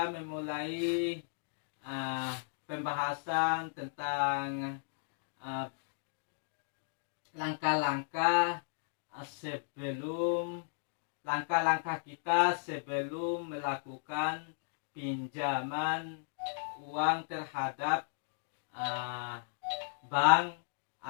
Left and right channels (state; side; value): silent; right; digital silence